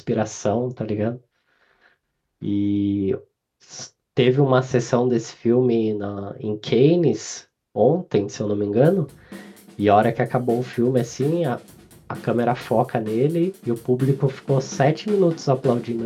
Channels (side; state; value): both; identical; correlation 1.00